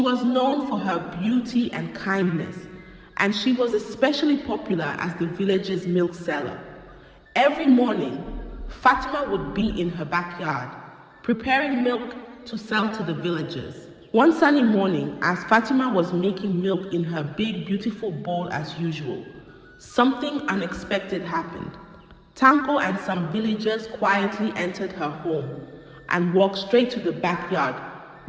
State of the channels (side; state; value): both; identical; correlation 1.00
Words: known for her beauty and kindness, and she was especially popular as the village's milk seller. Every morning, Fatima would be in her backyard, preparing milk to sell to the villagers. One sunny morning, as Fatima was making milk in her big, beautiful bowl as usual, something unexpected happened. Tanko and some villagers quietly entered her home and walked straight to the backyard